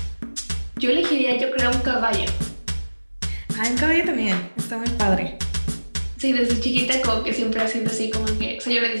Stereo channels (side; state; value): both; inverted; correlation -1.00